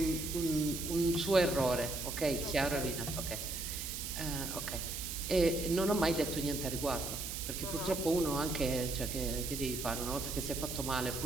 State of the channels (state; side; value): noise; right; hiss, 5 dB below the sound